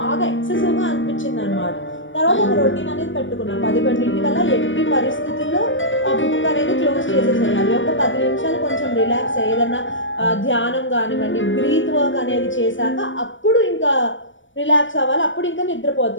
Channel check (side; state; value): right; late; 0.56 ms